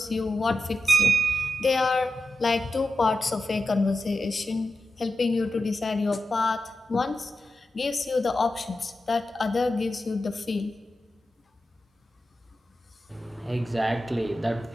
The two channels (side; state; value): both; normal; correlation 0.91